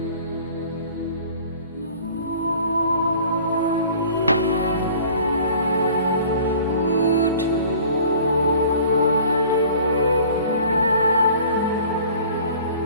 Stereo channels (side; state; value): both; inverted; correlation -0.48